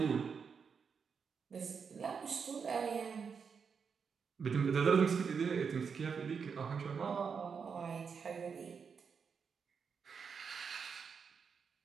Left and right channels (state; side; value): quieter; left; 6.1 dB